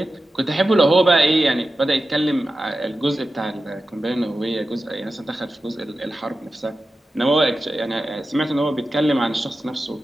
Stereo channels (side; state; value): both; normal; correlation 0.93